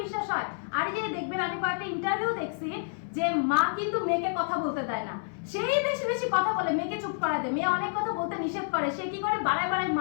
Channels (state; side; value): silent; right; 57 dB below the other